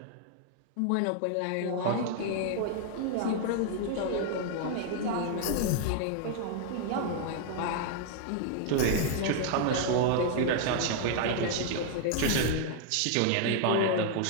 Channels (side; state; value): both; different; correlation 0.00